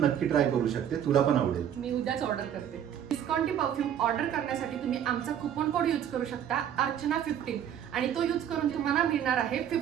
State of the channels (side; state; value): left; quieter; 9.7 dB